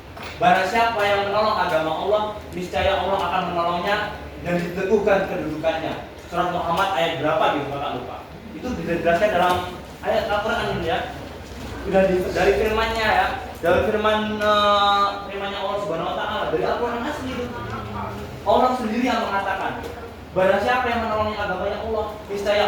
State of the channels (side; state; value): both; identical; correlation 1.00